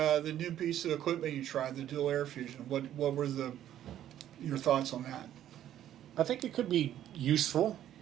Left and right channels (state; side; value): quieter; left; 11.5 dB